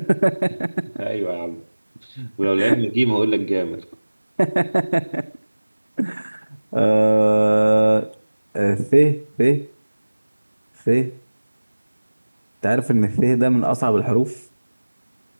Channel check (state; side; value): inverted; both; correlation -1.00